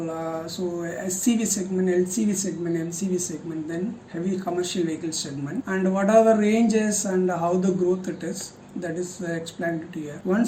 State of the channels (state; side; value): identical; both; correlation 1.00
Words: so SCV segment, LCV segment, MCV segment, then heavy commercial vehicle segment, and what are the ranges and how the growth it is. That is explained to here.